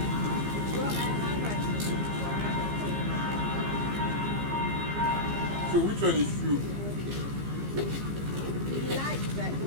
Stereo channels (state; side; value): late; left; 15 ms